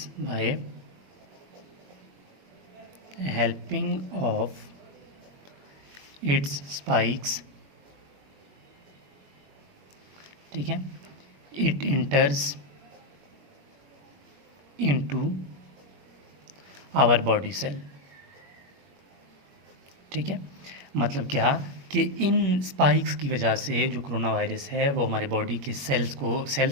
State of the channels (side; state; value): left; late; 21 ms